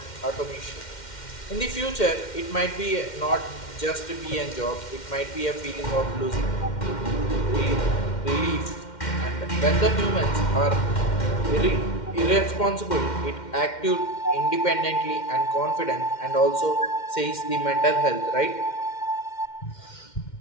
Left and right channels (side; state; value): right; late; 2.1 ms